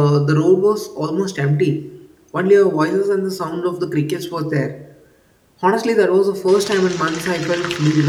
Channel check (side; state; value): both; identical; correlation 1.00